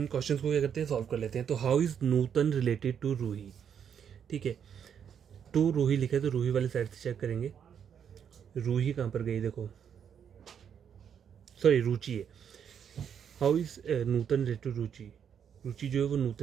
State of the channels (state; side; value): quieter; left; 8.1 dB